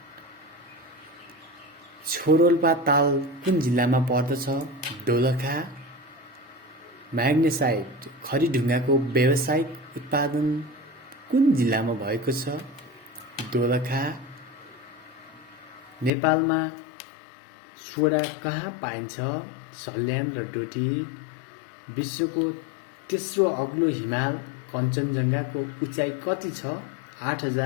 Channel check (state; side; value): drops out; right; at 16.1 s